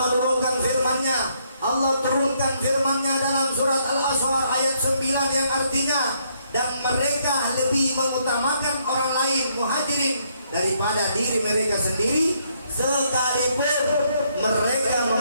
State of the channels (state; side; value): inverted; both; correlation -0.72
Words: firman-Nya. Allah turunkan firman-Nya dalam surat Al-Asr ayat 9 yang artinya, dan mereka lebih mengutamakan orang lain muhajirin daripada diri mereka sendiri, sekalipun mereka